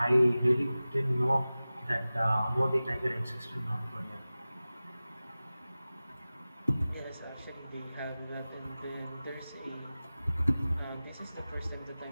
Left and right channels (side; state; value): both; inverted; correlation -0.97